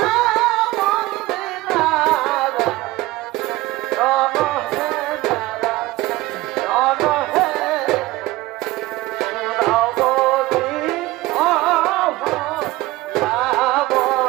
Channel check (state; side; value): quieter; left; 18.9 dB